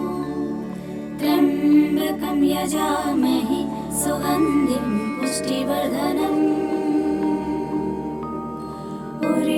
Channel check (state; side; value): identical; both; correlation 1.00